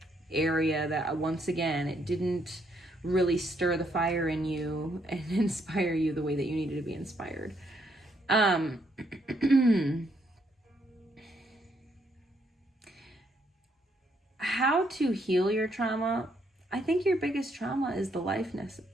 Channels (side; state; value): both; normal; correlation 0.73